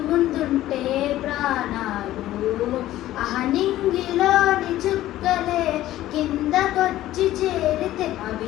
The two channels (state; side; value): quieter; right; 14.5 dB